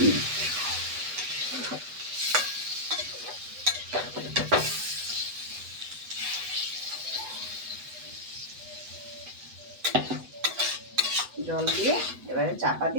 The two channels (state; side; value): late; left; 8.1 ms